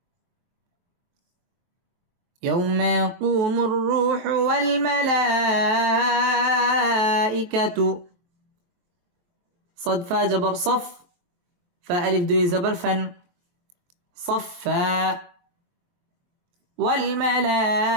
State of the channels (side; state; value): left; late; 23 ms